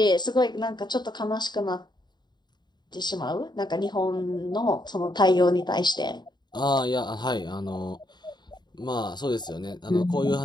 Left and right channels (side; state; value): right; late; 0.21 ms